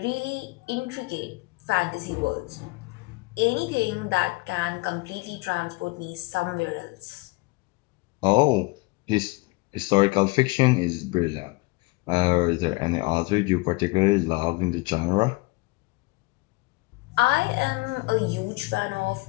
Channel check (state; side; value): quieter; right; 24.8 dB